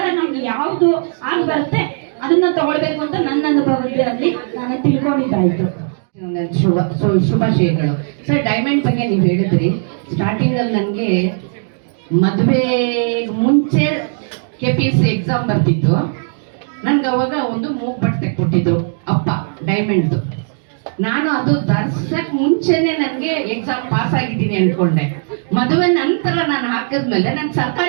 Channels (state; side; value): silent; left; 62 dB below the other